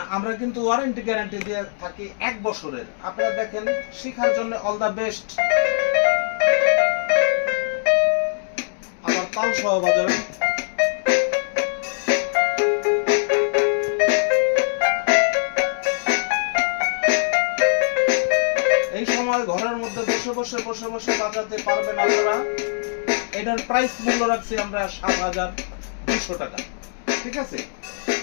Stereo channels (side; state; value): right; silent; digital silence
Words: আমরা কিন্তু ওয়ারেন্টি গ্যারান্টি দিয়ে থাকি 1 বছরের। আপনারা দেখেন, শেখার জন্য অল দা বেস্ট। আবার তাল সহ বাজাবেন। এই সময় ঘরের মধ্যে বসে বসে বাজাতে পারবেন আপনারা। এটার প্রাইস মূল্য রাখছি আমরা ৭,২০০ টাকা। ঠিক আছে,